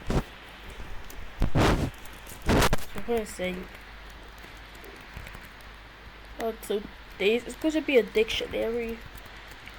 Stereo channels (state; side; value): identical; both; correlation 1.00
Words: we're going to say, so days is going to be a dictionary.